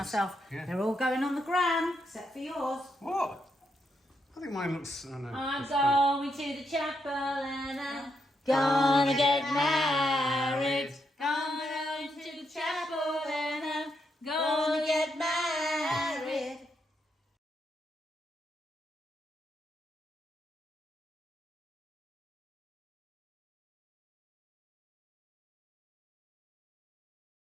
Yeah. They're all going on the gram, except for yours. What? I think mine looks... I know. I'm it's good. going to the chapel and I'm gonna get married. Gonna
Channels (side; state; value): both; normal; correlation 0.80